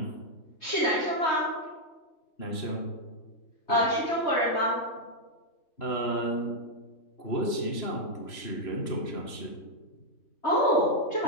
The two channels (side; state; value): right; late; 3.0 ms